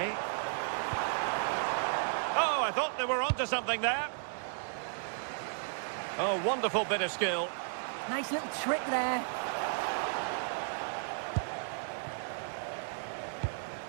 Oh, I thought they were onto something there. Oh, wonderful bit of skill. Nice little trick there.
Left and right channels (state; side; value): silent; left; digital silence